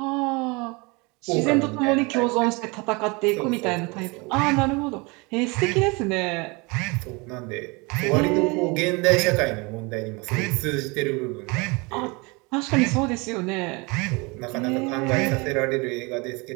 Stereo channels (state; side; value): quieter; left; 27.5 dB